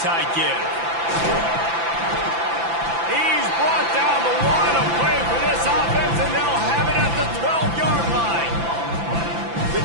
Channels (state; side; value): late; left; 5.9 ms